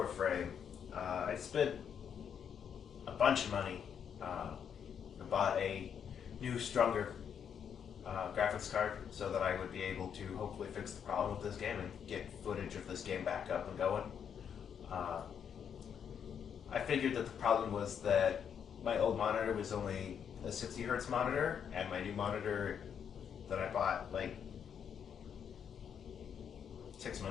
I spent a bunch of money. I bought a new, stronger graphics card so that I would be able to hopefully fix the problem with this game and get footage of this game back up and going. Uh, I figured that the problem was that my old monitor was only a 60 hertz monitor, and my new monitor that I bought like 6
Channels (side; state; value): right; quieter; 7.9 dB